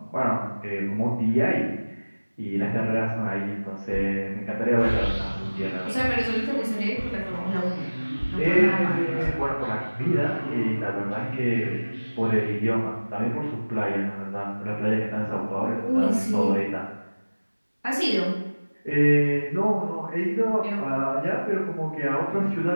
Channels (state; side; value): inverted; both; correlation -1.00